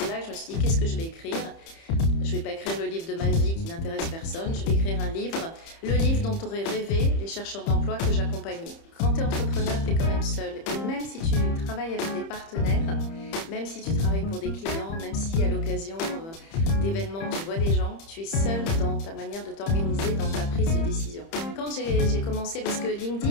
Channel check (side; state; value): right; late; 30 ms